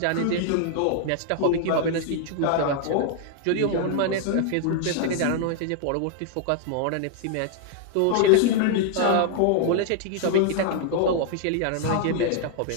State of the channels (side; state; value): both; different; correlation 0.00